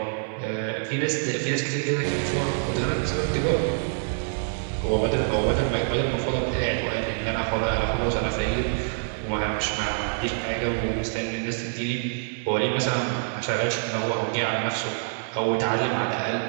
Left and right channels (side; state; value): left; silent; digital silence